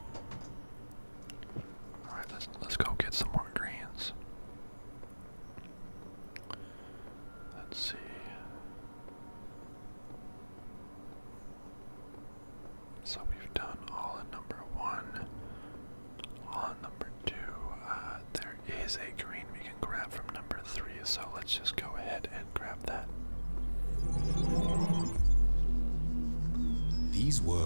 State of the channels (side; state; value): both; inverted; correlation -1.00